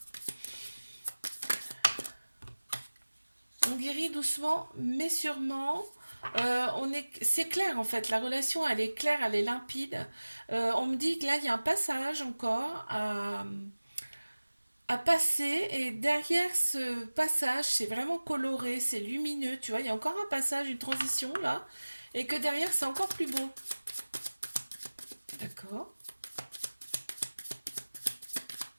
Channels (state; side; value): inverted; both; correlation -1.00